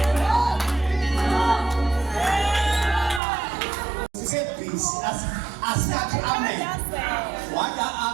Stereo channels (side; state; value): left; drops out; at 3.2 s